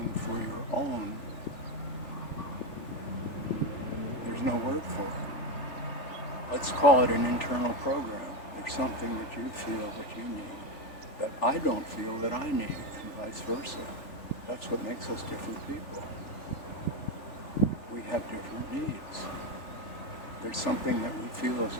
for your own. There's no word for it. Let's call it an internal program. There's something that you feel that you need that I don't feel that I need, and vice versa. That's what makes us different people. We have different needs. There's something that we feel is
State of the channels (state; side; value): late; right; 3.4 ms